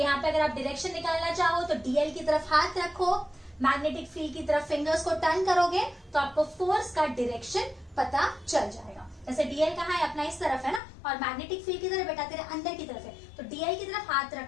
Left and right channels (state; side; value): drops out; right; at 10.8 s